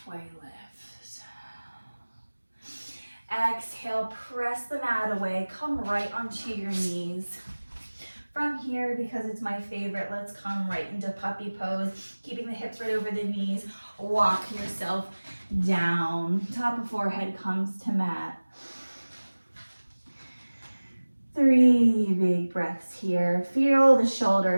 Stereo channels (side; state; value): both; inverted; correlation -1.00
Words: lift. Exhale, press the mat away, come right onto your knees. From here, because it's my favorite, let's come right into puppy pose, keeping the hips right over the knees. Walk yourself down. Top of forehead comes to mat. 3 big breaths here. Feel the